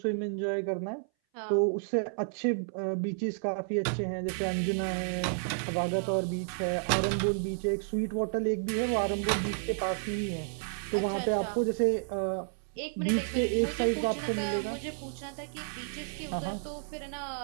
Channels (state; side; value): silent; left; 57 dB below the other